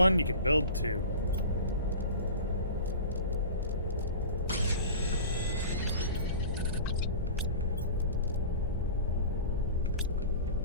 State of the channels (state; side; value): inverted; both; correlation -0.36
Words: you can build two.